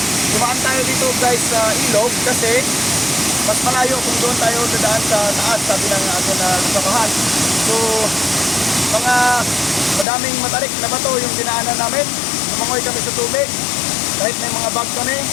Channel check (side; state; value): right; drops out; at 10.1 s